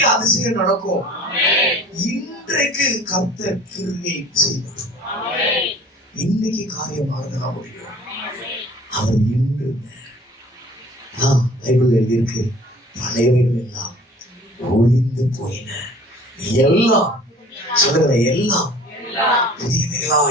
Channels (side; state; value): both; normal; correlation 0.48